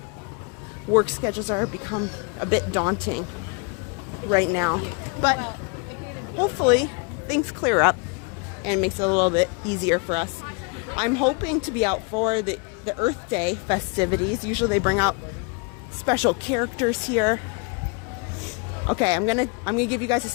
work schedules are become a bit daunting right now, but hopefully things clear up and makes it a little bit easier for us. I'm hoping to be out for the Earth Day festivities. Usually they bring out special characters here. Okay, I'm gonna give you guys a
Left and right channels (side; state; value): right; quieter; 32.9 dB